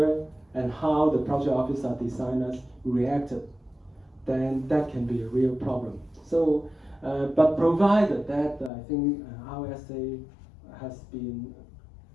and how the project officer designers reacted, then that can be a real problem. So, but provided that I think RSA has been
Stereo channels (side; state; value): right; drops out; at 8.7 s